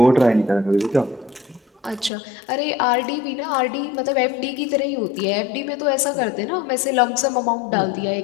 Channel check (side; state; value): right; drops out; at 2.1 s